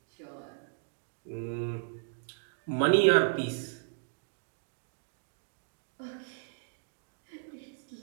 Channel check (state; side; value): silent; left; digital silence